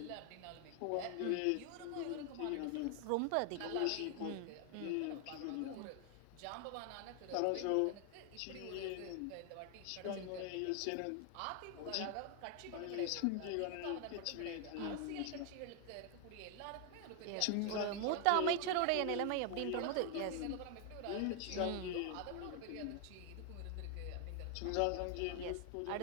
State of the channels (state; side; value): different; both; correlation 0.00